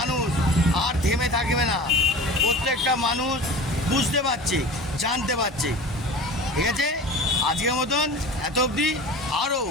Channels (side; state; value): both; normal; correlation 0.36